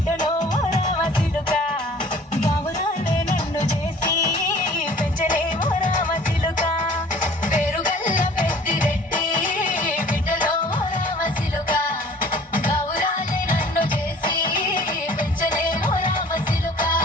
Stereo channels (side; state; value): both; normal; correlation 0.50